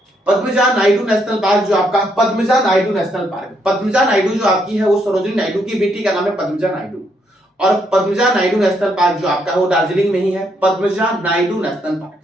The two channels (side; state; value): both; normal; correlation 0.75